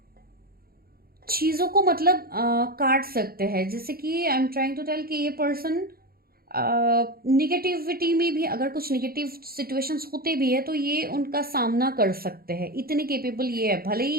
चीज़ों को मतलब काट सकते हैं। जैसे कि I am trying to tell कि ये पर्सन निगेटिविटी में भी, अगर कुछ निगेटिव सिचुएशंस होते भी है तो ये उनका सामना कर सकते हैं, इतने केपेबल ये है। भले ही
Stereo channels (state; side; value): late; left; 0.44 ms